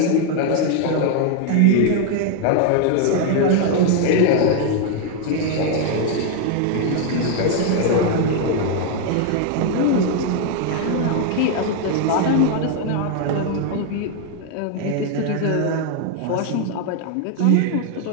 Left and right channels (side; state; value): both; different; correlation 0.00